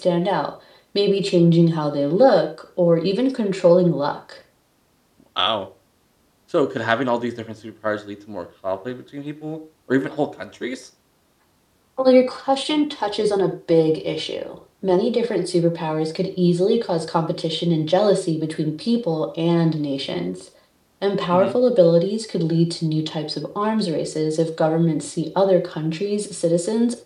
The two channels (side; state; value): both; identical; correlation 1.00